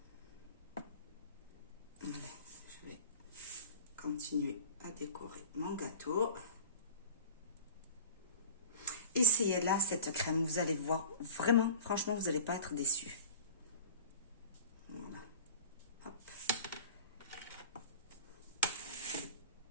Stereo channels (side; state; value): both; inverted; correlation -0.39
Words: Allez, je vais continuer à décorer mon gâteau. Essayez là cette crème, vous allez voir, vraiment, franchement, vous n'allez pas être déçus. Voilà. Hop.